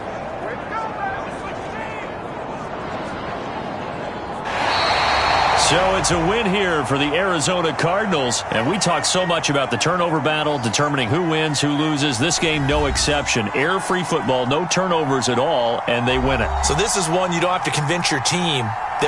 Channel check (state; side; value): identical; both; correlation 1.00